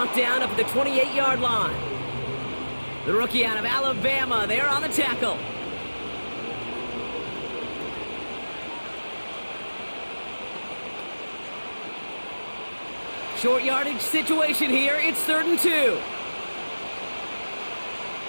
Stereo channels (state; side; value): inverted; both; correlation -1.00